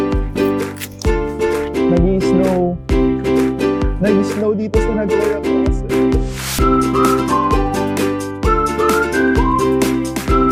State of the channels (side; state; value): both; identical; correlation 1.00